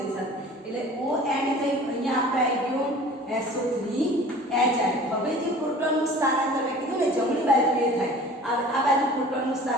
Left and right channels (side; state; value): both; normal; correlation 0.44